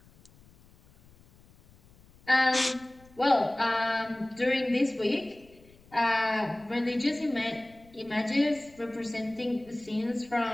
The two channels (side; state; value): left; noise; rumble, 27 dB below the sound